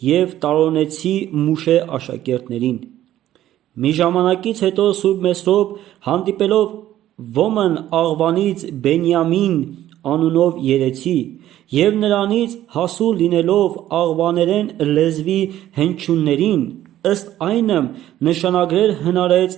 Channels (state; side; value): quieter; left; 13.0 dB